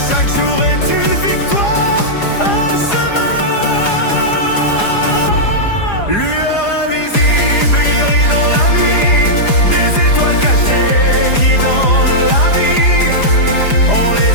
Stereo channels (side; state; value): right; late; 4.9 ms